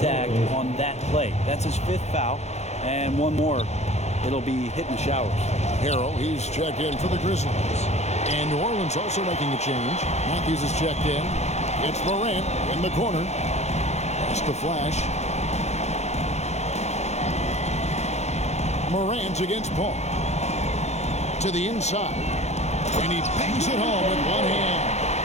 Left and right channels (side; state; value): right; late; 0.32 ms